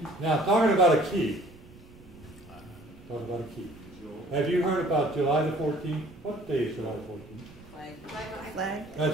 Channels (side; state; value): right; noise; rumble, 23 dB below the sound